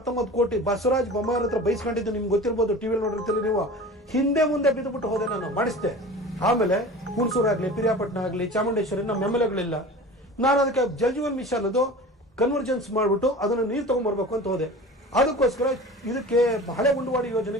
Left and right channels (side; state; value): both; normal; correlation 0.37